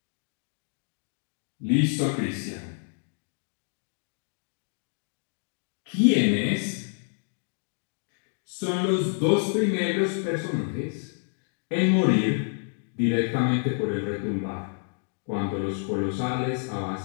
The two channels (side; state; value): right; silent; 59 dB below the other